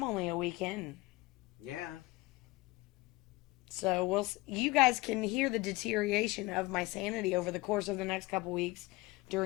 only a weekend. Yeah. So you guys can hear the deterioration of my sanity over the course of the next couple weeks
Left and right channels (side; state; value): right; quieter; 21.8 dB